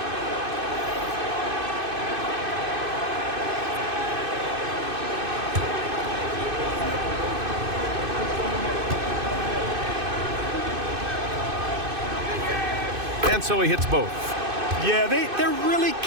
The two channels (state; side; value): late; left; 2.6 ms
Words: And so he hits both. Yeah, they're really